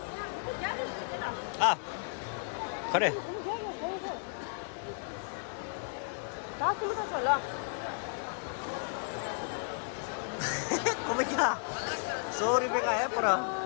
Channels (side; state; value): right; silent; 55 dB below the other